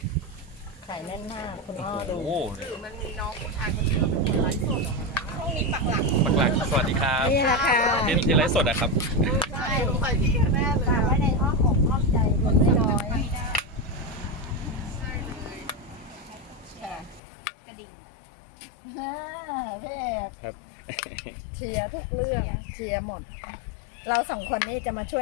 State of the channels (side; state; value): right; drops out; at 17.2 s